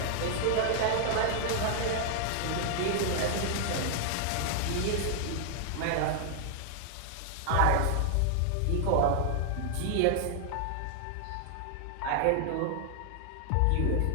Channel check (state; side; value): different; both; correlation 0.00